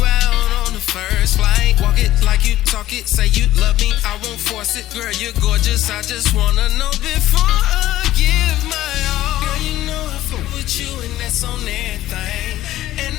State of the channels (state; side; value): quieter; right; 14.4 dB